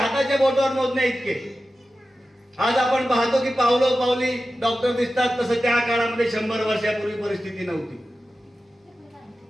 बोटावर मोजणे इतके. आज आपण पाहतो की पावलो पावली डॉक्टर दिसतात, तसं त्या काळामध्ये 100 वर्षापूर्वी परिस्थिती नव्हती.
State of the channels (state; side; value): normal; both; correlation 0.94